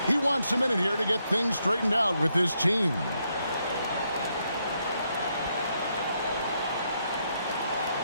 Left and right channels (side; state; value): both; inverted; correlation -0.78